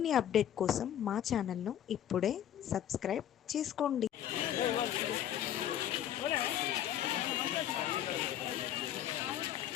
update కోసం మా ఛానల్ను ఇప్పుడే సబ్స్క్రైబ్ చేసుకోండి.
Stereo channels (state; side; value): quieter; right; 10.8 dB